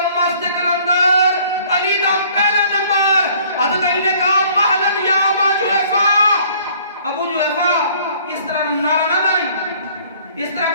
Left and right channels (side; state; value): both; inverted; correlation -0.56